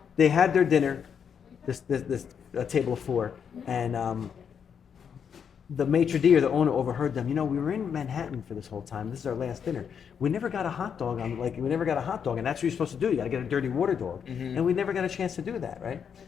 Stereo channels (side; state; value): right; quieter; 7.4 dB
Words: They had their dinner, this table of 4, and the maitre d' or the owner overheard them. We were in Manhattan for this whole time. This is our last dinner. We never got a hot dog and that's what you're supposed to do. You got to get a dirty water dog, and we never got a chance to do that, right?